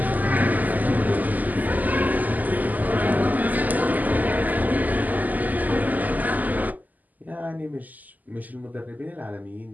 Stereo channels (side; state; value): left; late; 0.081 ms